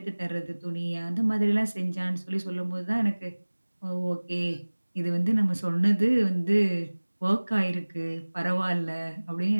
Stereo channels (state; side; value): inverted; both; correlation -1.00